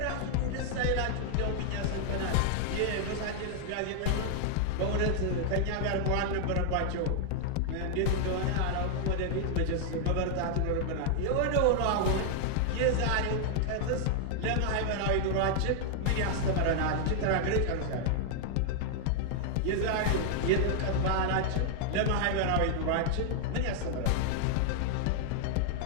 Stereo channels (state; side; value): different; both; correlation 0.00